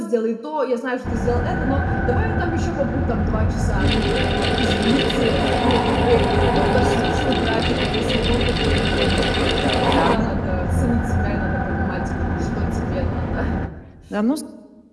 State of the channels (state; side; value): identical; both; correlation 1.00